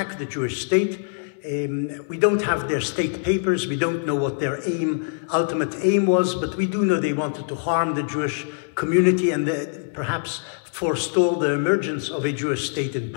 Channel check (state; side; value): silent; right; digital silence